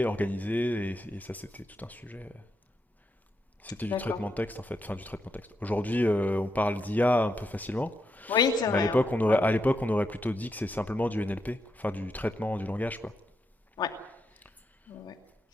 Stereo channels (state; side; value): normal; both; correlation 0.83